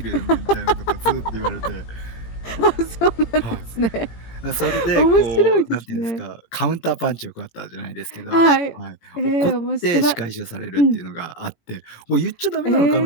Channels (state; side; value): late; right; 18 ms